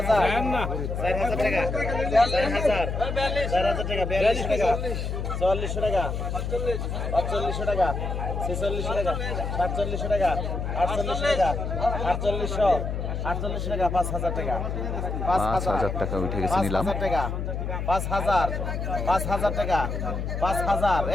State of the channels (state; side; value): noise; left; hum, 3 dB below the sound